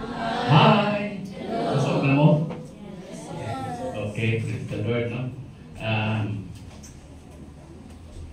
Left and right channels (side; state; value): both; identical; correlation 1.00